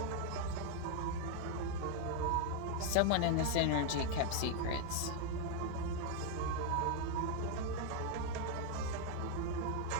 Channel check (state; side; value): different; both; correlation 0.00